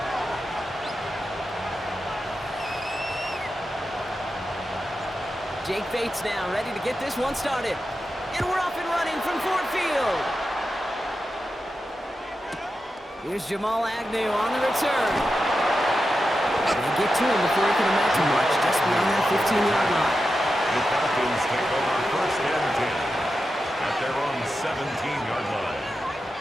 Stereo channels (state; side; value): normal; both; correlation 0.90